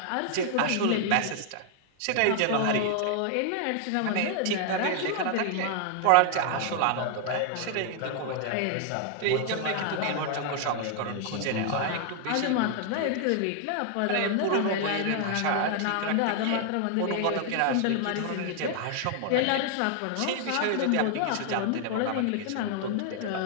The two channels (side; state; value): both; different; correlation 0.00